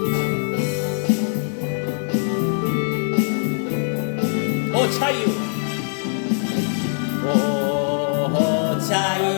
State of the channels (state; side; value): silent; right; 64 dB below the other